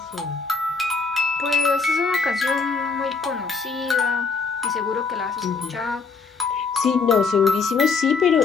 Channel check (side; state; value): right; quieter; 4.8 dB